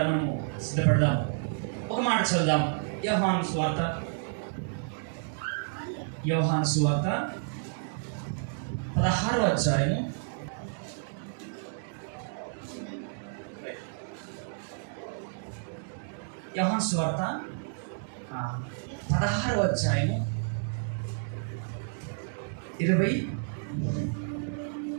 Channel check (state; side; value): silent; left; digital silence